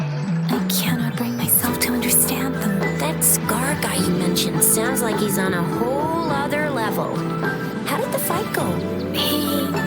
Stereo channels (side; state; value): both; identical; correlation 1.00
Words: I cannot bring myself to understand them. That Scar guy you mentioned sounds like he's on a whole other level. How did the fight go?